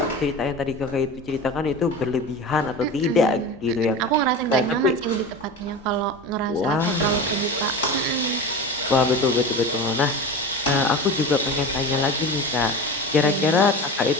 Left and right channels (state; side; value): normal; both; correlation 0.30